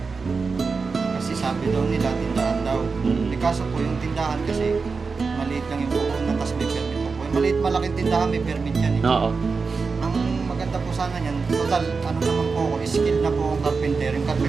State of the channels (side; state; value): left; quieter; 4.7 dB